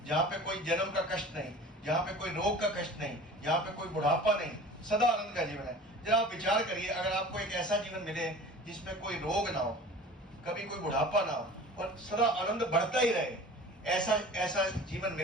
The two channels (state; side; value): normal; both; correlation 0.41